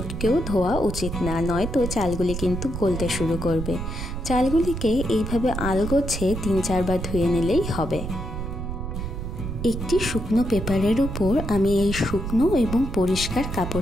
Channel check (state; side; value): noise; right; rumble, 5 dB below the sound